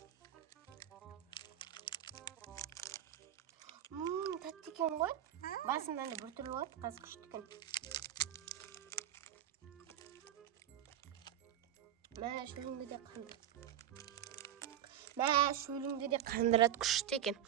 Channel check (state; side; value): quieter; left; 11.2 dB